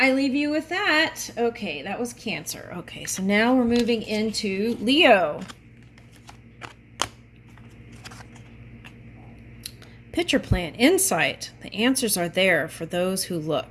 leave you with that. Okay, that was Cancer. Okay, so now we're moving into Leo. Picture plan, insight. The answers are there for those who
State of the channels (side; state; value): both; identical; correlation 1.00